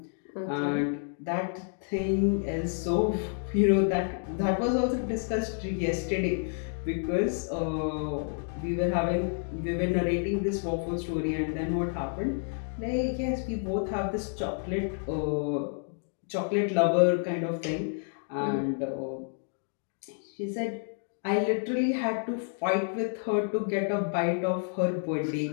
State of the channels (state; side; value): silent; right; 58 dB below the other